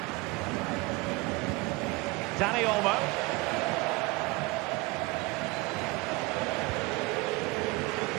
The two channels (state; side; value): quieter; left; 23.7 dB